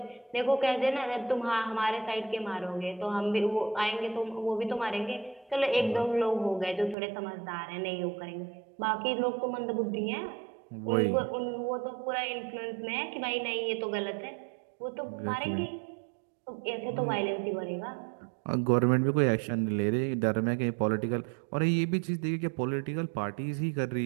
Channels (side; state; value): left; drops out; at 7.0 s